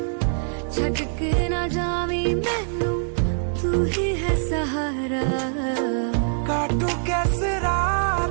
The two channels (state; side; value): silent; left; 63 dB below the other